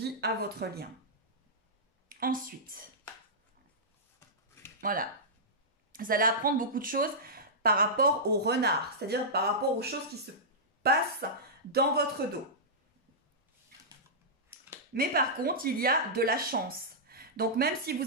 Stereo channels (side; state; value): both; normal; correlation -0.14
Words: à votre lien. Ensuite, voilà. Vous allez apprendre beaucoup de choses par rapport au renard, c'est-à-dire par rapport aux choses qui se passent dans votre dos. Mais par contre, il y a de la chance. Donc même si